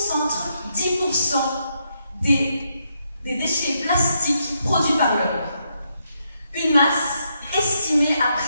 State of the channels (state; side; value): inverted; both; correlation -0.79